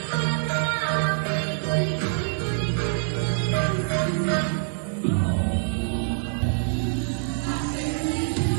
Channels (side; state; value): left; silent; 62 dB below the other